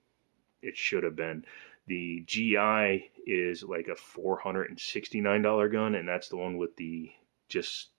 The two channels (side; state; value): left; silent; digital silence